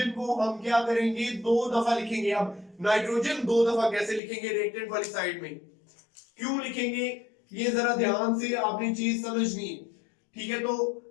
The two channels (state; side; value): drops out; right; at 4.2 s